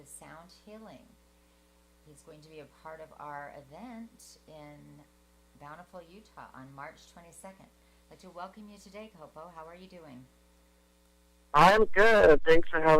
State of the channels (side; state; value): both; identical; correlation 1.00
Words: sound healing. He's going to be a part of our event in Bountiful, Utah on March 22nd. I'd like to welcome you today, Kopo. How are you doing? I'm good. Thanks for